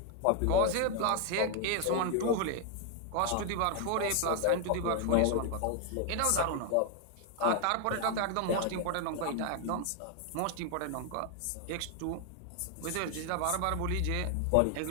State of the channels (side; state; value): both; different; correlation 0.00